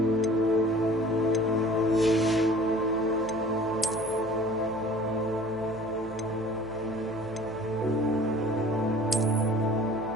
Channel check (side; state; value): left; noise; hum, 23 dB below the sound